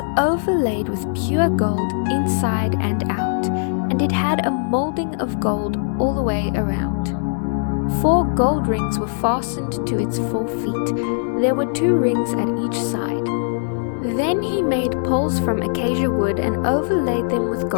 overlaid with pure gold inside and out, and it had a molding of gold all the way around. 4 gold rings were fastened to its 4 feet. There were 2 rings at each side. Then he made poles from acacia wood and overlaid them with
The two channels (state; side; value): silent; right; digital silence